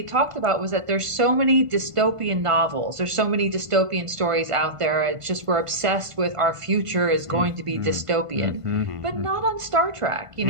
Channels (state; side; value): late; left; 1.5 ms